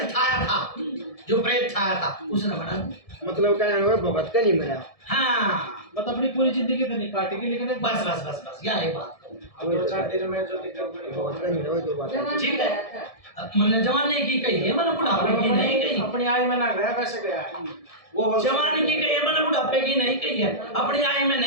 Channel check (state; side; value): late; right; 1.7 ms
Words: छाया था जो प्रेत छाया था उसने बना दिया मतलब क्या है भगत का नहीं मरा। हाँ मतलब अपनी पूरी जिंदगी तो नहीं काटेगी लेकिन एक बस बस बस बस यही बात अब 2-4 दिन में जो दिक्कत बड़ी भगत का नहीं रहा तो बात है। जवान ठीक गया है था। मैंने जवानी की कही है मैंने बुढ़ापे की नहीं कही अपनी आय में ना गया वैसे गया वो जवानी की कही है मैंने बुढ़ापे की नहीं कही है अपनी आय में